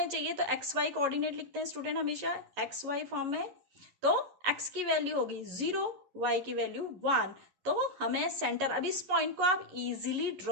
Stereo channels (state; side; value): late; left; 11 ms